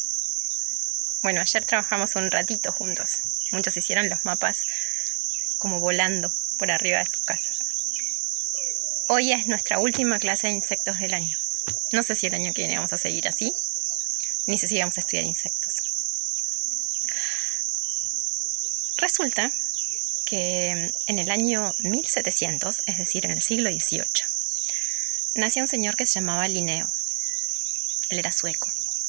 Bueno, ayer trabajamos un ratito juntos. Muchos hicieron los mapas como volando por arriba de sus casas. Hoy es nuestra última clase de insectos del año. No sé si el año que viene vamos a seguir así, ni sé si vamos a estudiar insectos. Resulta que en el año 1700, es decir, en el siglo XVIII, nació un señor que se llamaba Linneo. Él era sueco.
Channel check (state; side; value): silent; left; digital silence